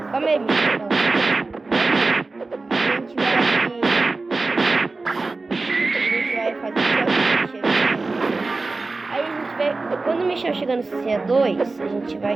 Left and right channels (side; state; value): left; quieter; 3.6 dB